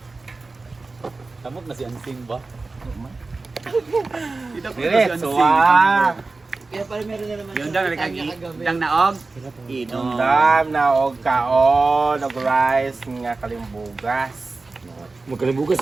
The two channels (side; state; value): left; quieter; 3.7 dB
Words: Tamot na si Ansing ba? Diretso ah. Kaya pala meron na naman Yung dang nagkagidang naog. Inom. Dam na og kaon, og rice nga kalimbugas. Magkalimbugas